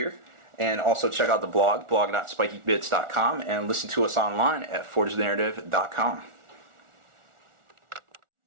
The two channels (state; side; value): late; left; 1.4 ms